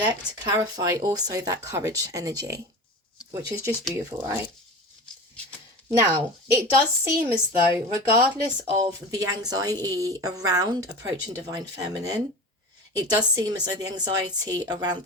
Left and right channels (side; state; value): both; normal; correlation 0.32